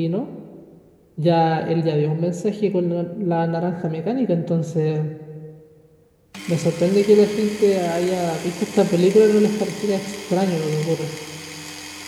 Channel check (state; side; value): identical; both; correlation 1.00